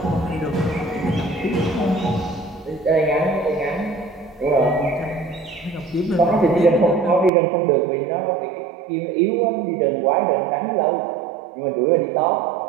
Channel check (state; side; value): drops out; left; at 7.3 s